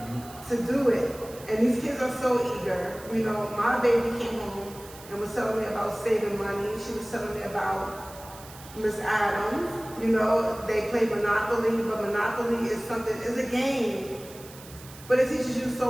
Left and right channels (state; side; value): noise; right; hiss, 18 dB below the sound